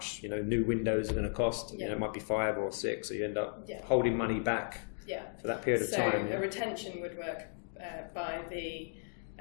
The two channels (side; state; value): right; silent; 54 dB below the other